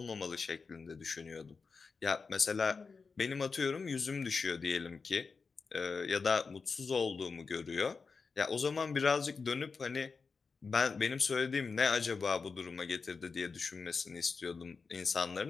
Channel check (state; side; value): quieter; right; 4.8 dB